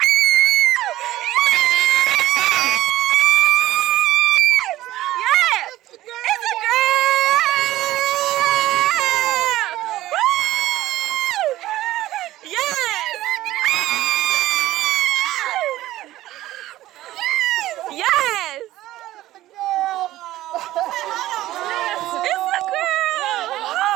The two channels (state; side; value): quieter; left; 15.4 dB